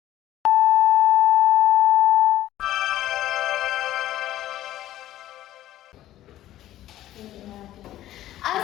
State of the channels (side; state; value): right; quieter; 13.6 dB